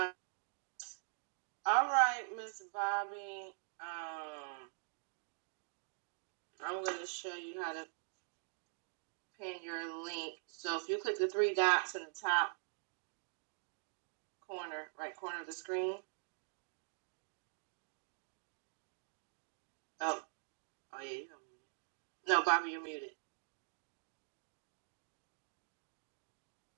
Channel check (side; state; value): left; silent; digital silence